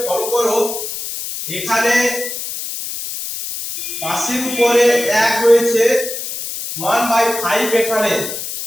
ফলো করো। এখানে পাশের উপরে 1 রয়েছে, 1/5 এখানে।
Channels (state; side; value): noise; left; hiss, 6 dB below the sound